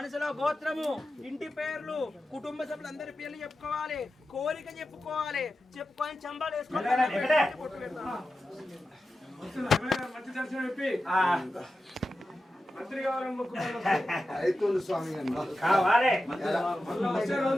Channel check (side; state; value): both; normal; correlation 0.92